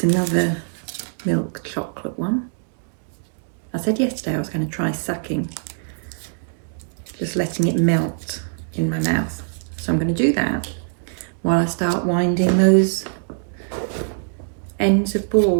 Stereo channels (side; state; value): left; silent; digital silence